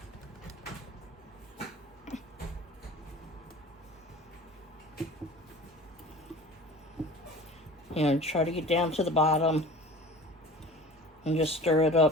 And try to get down to the bottom and just stir it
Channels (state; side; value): normal; both; correlation 0.40